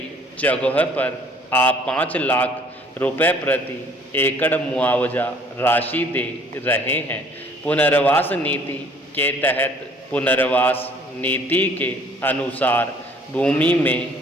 जगह पर आप 5 लाख रुपए प्रति एकड़ मुआवजा राशि दे रहे हैं। पुनर्वास नीति के तहत पुनर्वास नीति के अनुसार भूमि में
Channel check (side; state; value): both; normal; correlation 0.57